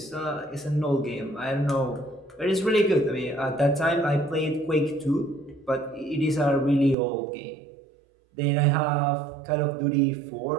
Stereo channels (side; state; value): left; drops out; at 7.0 s